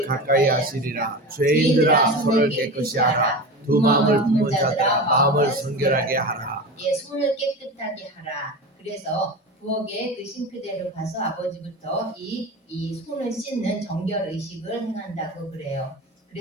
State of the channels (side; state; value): both; normal; correlation 0.27